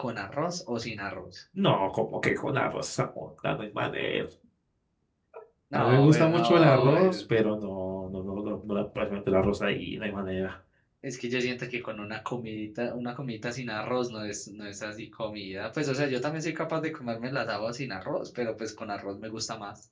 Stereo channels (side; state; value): both; identical; correlation 1.00